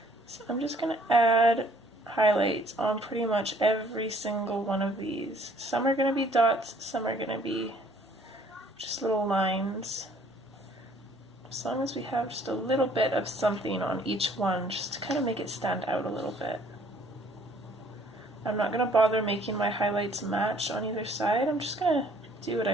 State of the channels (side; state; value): both; normal; correlation 0.60